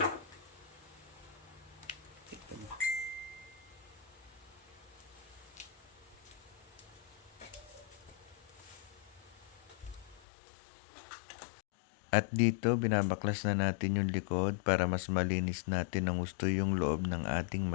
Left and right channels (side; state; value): right; drops out; at 10.2 s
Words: At dito, binabaklas na natin yung likod para mas malinis natin ang gusto yung loob ng ating